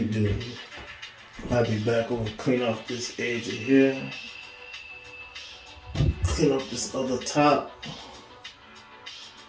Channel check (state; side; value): identical; both; correlation 1.00